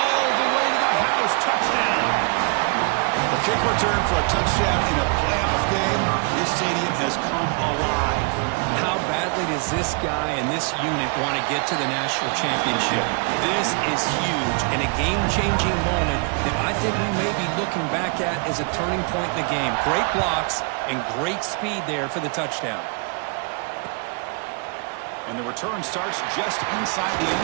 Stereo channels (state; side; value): quieter; left; 35.8 dB